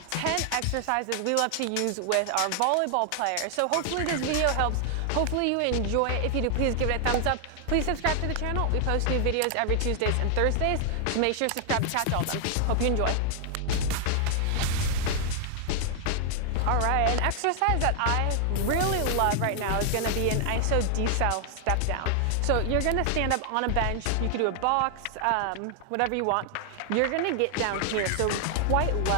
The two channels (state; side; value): different; both; correlation 0.00